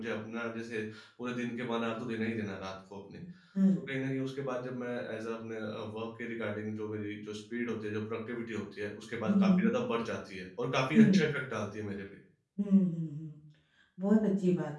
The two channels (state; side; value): identical; both; correlation 1.00